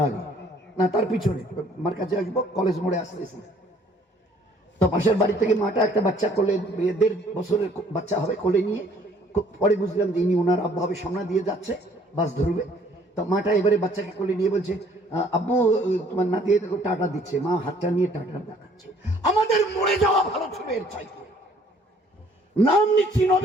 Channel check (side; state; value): both; normal; correlation 0.59